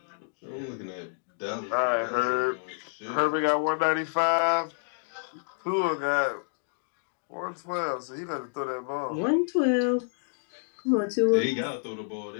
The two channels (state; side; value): silent; right; 59 dB below the other